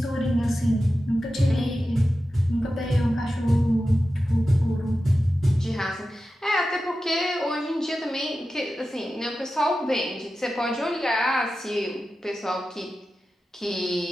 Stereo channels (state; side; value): normal; both; correlation 0.93